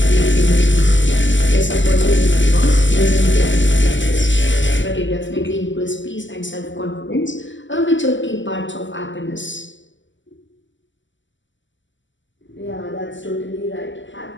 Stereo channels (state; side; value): late; right; 0.54 ms